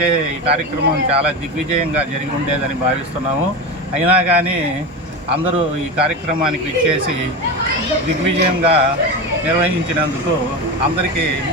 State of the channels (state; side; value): normal; both; correlation 0.21